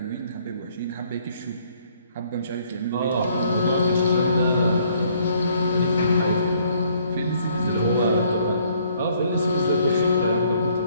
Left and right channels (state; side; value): inverted; both; correlation -0.65